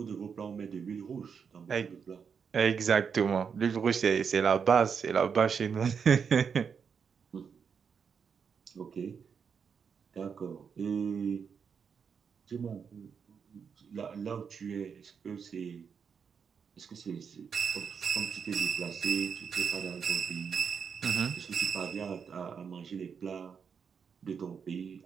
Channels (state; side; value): quieter; left; 6.5 dB